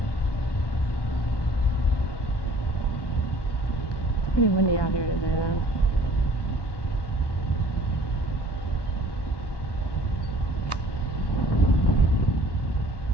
it's pretty windy out here today though.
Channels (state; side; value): late; right; 1.1 ms